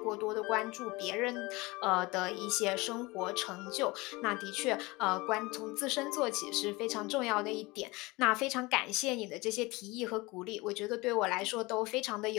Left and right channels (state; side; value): quieter; right; 23.1 dB